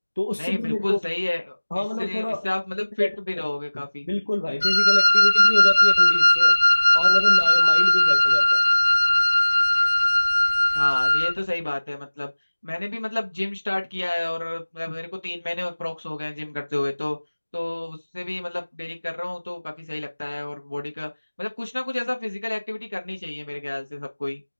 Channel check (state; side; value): inverted; both; correlation -1.00